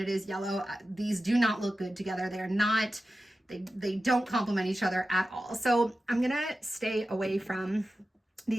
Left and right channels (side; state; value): both; normal; correlation 0.93